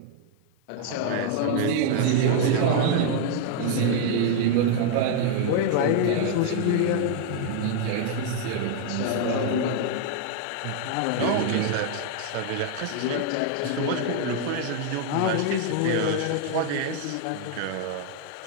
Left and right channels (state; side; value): different; both; correlation 0.00